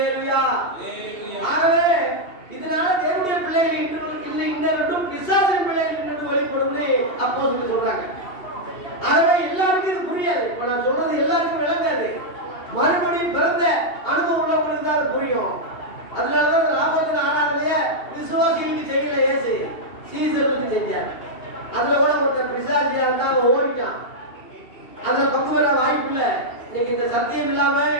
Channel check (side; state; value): right; late; 2.7 ms